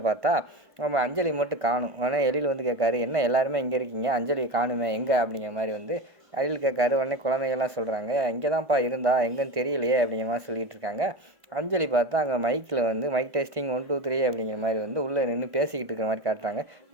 பார்த்தா நம்ம அஞ்சலி மட்டும் காணும். உடனே எழில் வந்து கேட்காரு, என்ன எல்லாருமே இங்கே இருக்கீங்க, அஞ்சலி காணுமே எங்கே அப்படிங்கிற மாதிரி வந்து எழில் கேட்காரு. உடனே குழந்தைகள்லாம் சொல்கிறாங்க, இங்கே தான்ப்பா இருந்தா எங்கேன்னு தெரியலையே அப்படிங்கிற மாதிரி சொல்லிகிட்டு இருக்காங்க. அஞ்சலி பார்த்தா அங்கே மைக்கில் வந்து மைக் டெஸ்டிங் 1 2 3 அப்படிங்கிற மாதிரி வந்து உள்ளே நின்று பேசிக்கிட்டு இருக்கிற மாதிரி காட்டுறாங்க.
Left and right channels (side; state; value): left; late; 1.5 ms